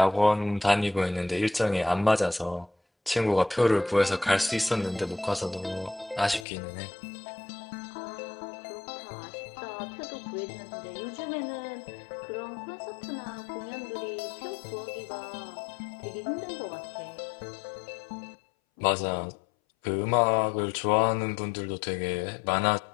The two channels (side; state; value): right; drops out; at 6.5 s